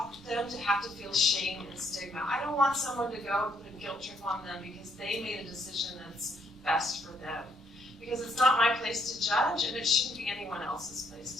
them to have to feel shame and stigma. I don't want someone to go and put a guilt trip on them because they made a decision that's best for them. Because it's not my place to judge, and it shouldn't be anyone else's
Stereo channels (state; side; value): normal; both; correlation 0.71